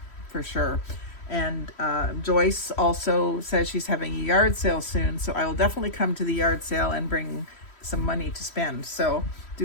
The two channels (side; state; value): right; late; 3.1 ms